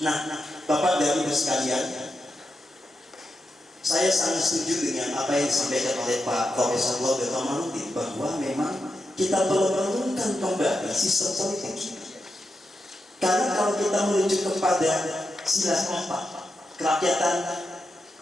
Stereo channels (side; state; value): both; normal; correlation 0.87